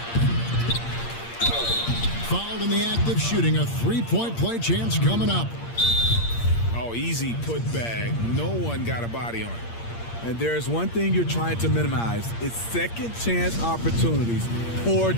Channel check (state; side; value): late; right; 8.6 ms